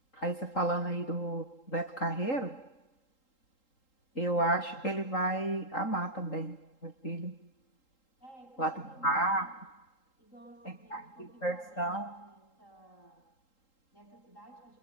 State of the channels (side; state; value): right; late; 3.8 ms